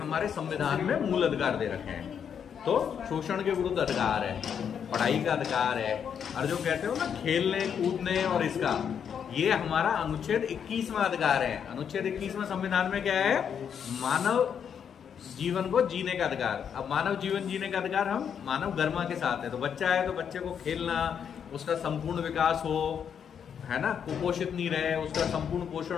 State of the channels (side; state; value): right; quieter; 7.8 dB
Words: संविधान में मूल अधिकार दे रखे हैं। तो शोषण के विरुद्ध अधिकार है, पढ़ाई का अधिकार है, और जो कहते हो ना खेलने कूदने और इसका, ये हमारा अनुच्छेद 21वां अधिकार है। अनुच्छेद 21वां संविधान में क्या है? मानव जीवन को जीने का अधिकार। अब मानव जीवन जीने का अधिकार हम मानव गरिमा के साथ है। तो बच्चा है तो बच्चे को खेलना, उसका संपूर्ण विकास हो, है ना, कुपोषित नहीं रहे, उसका संपूर्ण